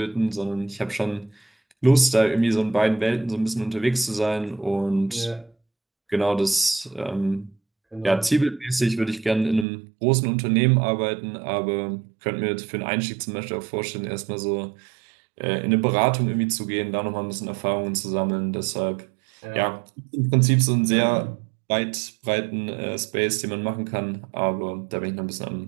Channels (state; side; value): drops out; left; at 9.7 s